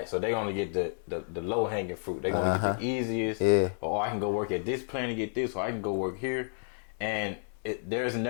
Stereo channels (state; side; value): silent; right; 56 dB below the other